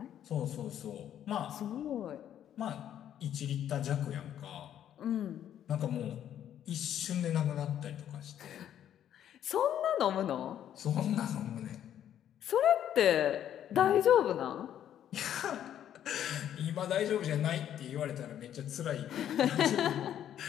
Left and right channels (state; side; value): quieter; right; 10.4 dB